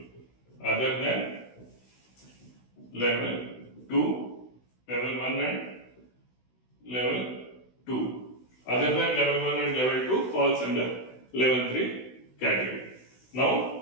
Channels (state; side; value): late; right; 16 ms